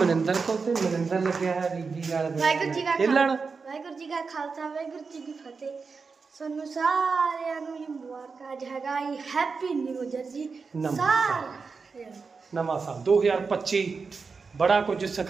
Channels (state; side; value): quieter; left; 4.8 dB